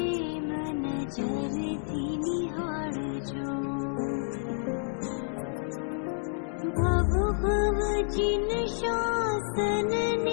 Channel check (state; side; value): silent; right; digital silence